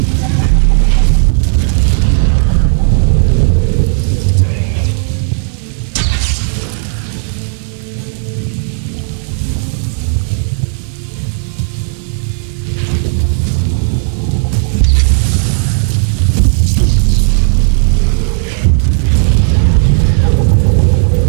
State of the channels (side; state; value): left; silent; digital silence